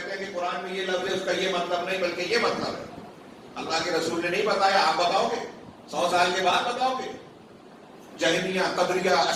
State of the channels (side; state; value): both; identical; correlation 1.00